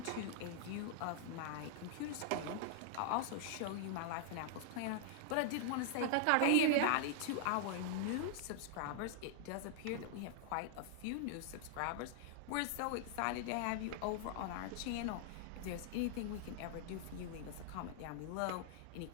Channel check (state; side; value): different; both; correlation -0.01